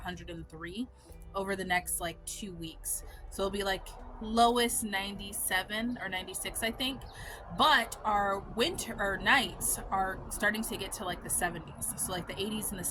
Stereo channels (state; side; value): identical; both; correlation 1.00